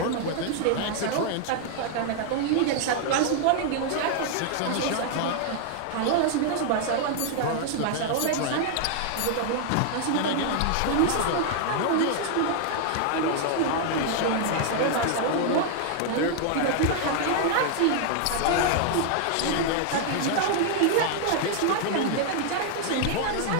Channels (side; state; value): both; different; correlation 0.00